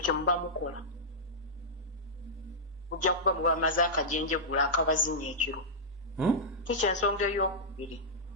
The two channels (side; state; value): both; normal; correlation -0.11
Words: kye muba mukola ojja kuba muba maze akajenjegula akabazinya ekiro kikyensonga ey'okubiri